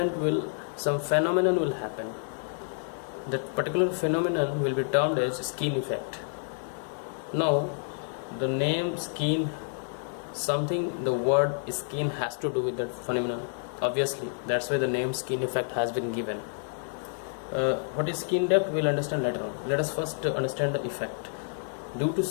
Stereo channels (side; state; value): right; silent; digital silence